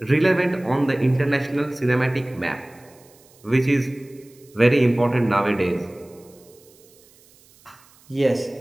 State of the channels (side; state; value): right; noise; hiss, 28 dB below the sound